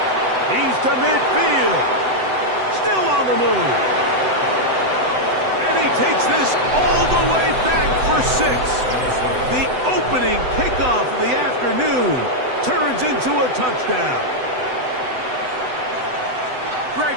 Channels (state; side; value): late; left; 7.9 ms